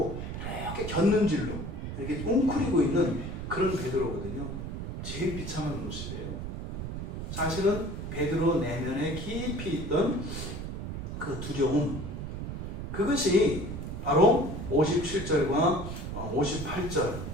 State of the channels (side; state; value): right; noise; rumble, 6 dB below the sound